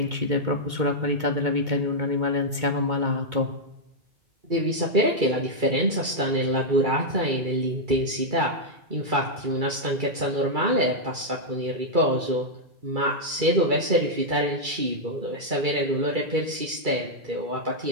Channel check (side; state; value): left; late; 2.3 ms